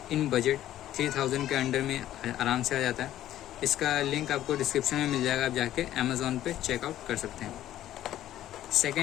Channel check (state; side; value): quieter; right; 12.9 dB